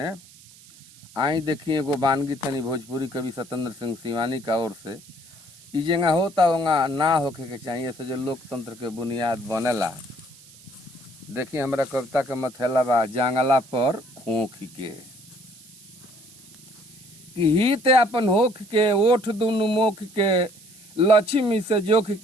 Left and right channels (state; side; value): noise; right; hiss, 23 dB below the sound